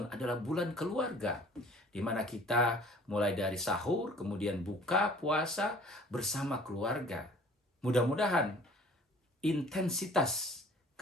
adalah bulan keluarga, di mana kita mulai dari sahur, kemudian buka puasa bersama keluarga. Mudah-mudahan intensitas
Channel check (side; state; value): both; normal; correlation 0.51